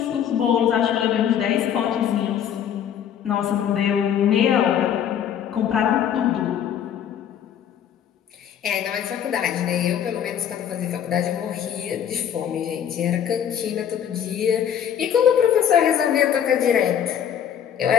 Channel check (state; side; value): quieter; right; 9.1 dB